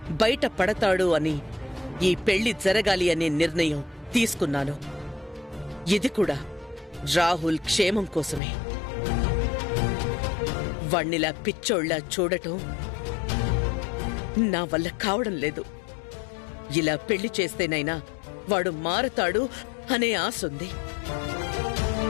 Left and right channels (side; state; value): right; drops out; at 8.4 s